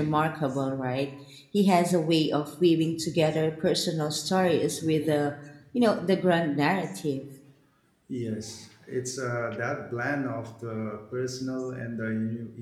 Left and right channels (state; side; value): identical; both; correlation 1.00